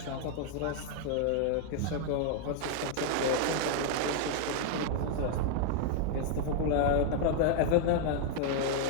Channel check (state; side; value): different; both; correlation 0.00